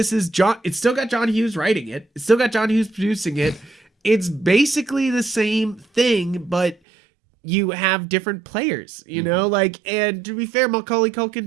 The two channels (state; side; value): drops out; left; at 6.8 s